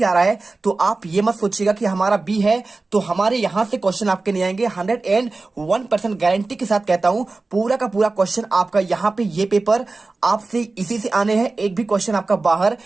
आ रहा है, तो आप ये मत सोचिएगा कि हमारा बी है तो हमारे यहां से क्वेश्चन आपके नहीं आएंगे। 101% गारंटी के साथ कहता हूं, पूरा का पूरा क्वेश्चन आपका यहां पे ये पेपर आपसे इसी से आने हैं। एक भी क्वेश्चन आपका बाहर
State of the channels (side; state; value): left; quieter; 3.5 dB